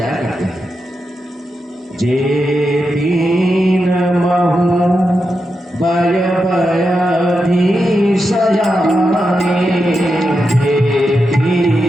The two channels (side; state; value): both; normal; correlation 0.87